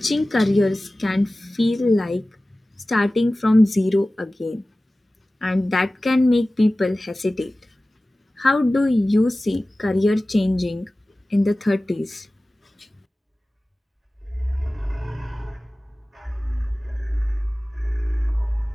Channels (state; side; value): normal; both; correlation 0.97